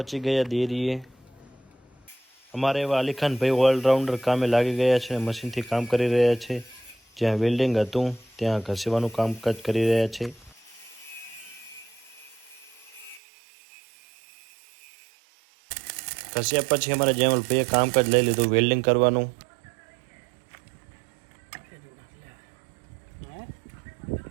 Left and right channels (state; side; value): drops out; left; at 13.2 s